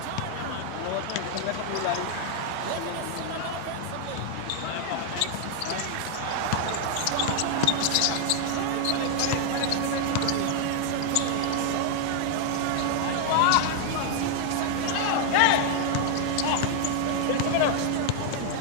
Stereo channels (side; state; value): both; different; correlation 0.00